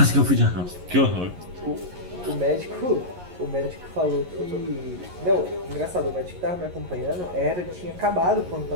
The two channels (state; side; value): late; left; 11 ms